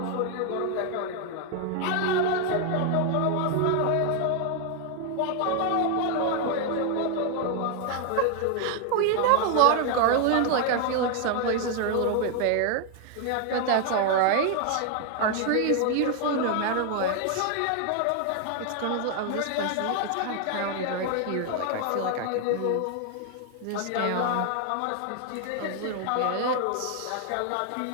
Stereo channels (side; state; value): both; different; correlation 0.00